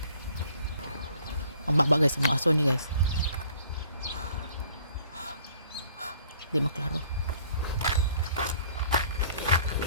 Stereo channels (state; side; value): inverted; both; correlation -0.57